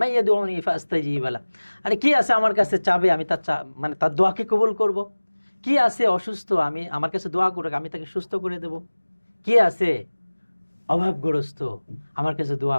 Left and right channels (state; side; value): inverted; both; correlation -1.00